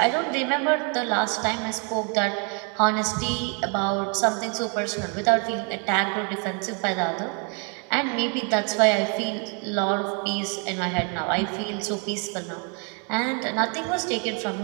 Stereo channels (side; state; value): left; quieter; 37.2 dB